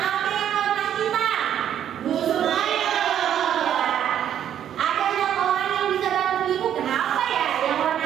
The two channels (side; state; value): left; quieter; 10.0 dB